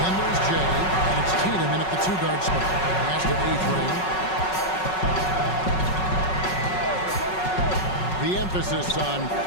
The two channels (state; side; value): late; right; 5.4 ms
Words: there's Jay, and it's Tatum in at the two-guard spot. Pass to A-Train. The emphasis on